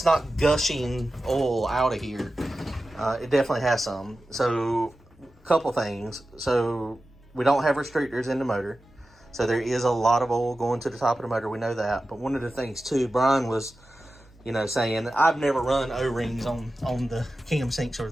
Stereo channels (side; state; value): both; normal; correlation 0.94